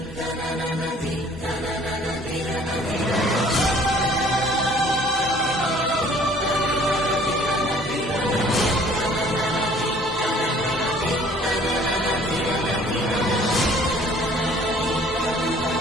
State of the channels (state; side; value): normal; both; correlation 0.55